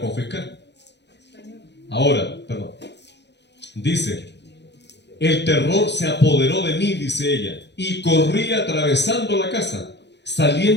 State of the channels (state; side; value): late; right; 0.50 ms